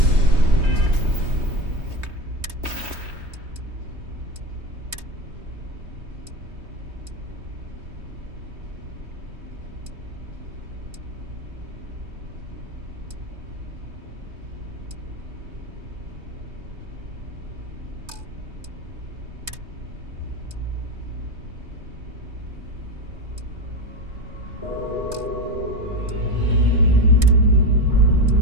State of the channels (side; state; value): left; late; 3.2 ms